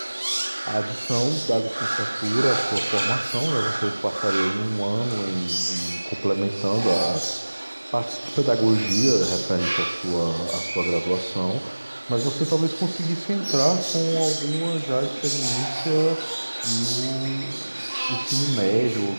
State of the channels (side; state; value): both; inverted; correlation -1.00